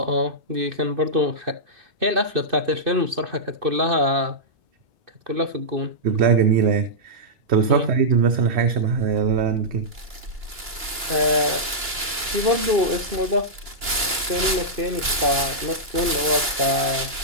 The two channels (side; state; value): left; late; 2.9 ms